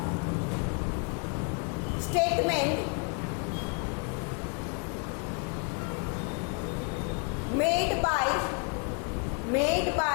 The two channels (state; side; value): quieter; right; 37.7 dB